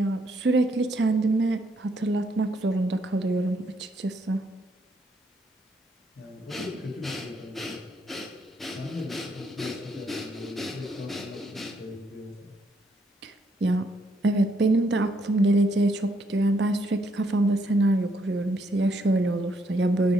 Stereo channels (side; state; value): both; normal; correlation 0.73